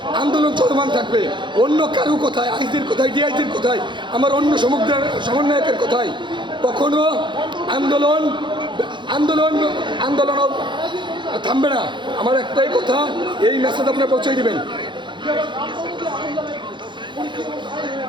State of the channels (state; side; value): late; left; 0.23 ms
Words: আন্দোলন চলমান থাকবে। অন্য কারো কোথায়, আইজির কোথায়, ডিআইজির কোথায়, আমার অন্য সমন্বয়কের কোথায়, কখনো আন্দোলন আন্দোলন আন্দোলন থামবে না। আমার একটাই কথা, এই মেসেজ আপনারা পৌঁছে দিবেন